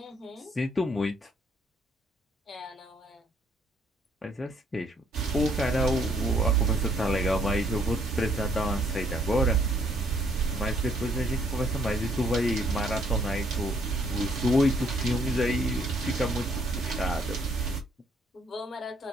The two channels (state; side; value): normal; both; correlation 0.67